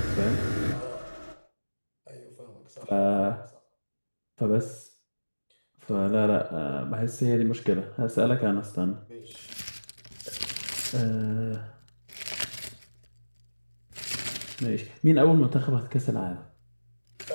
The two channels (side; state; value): both; inverted; correlation -1.00